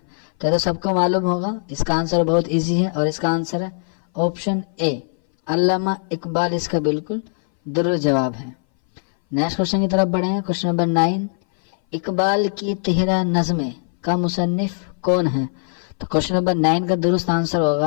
तो सबको मालूम होगा, इसका आंसर बहुत इजी है और इसका आंसर है ऑप्शन ए, अल्लामा इकबाल इसका बिल्कुल दुरुस्त जवाब है। नेक्स्ट क्वेश्चन की तरफ बढ़ेंगे। क्वेश्चन नंबर 9, इकबाल की तिहरा नज़्में का मुसन्निफ कौन है? तो क्वेश्चन नंबर 9 का दुरुस्त आंसर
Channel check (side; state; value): right; silent; 61 dB below the other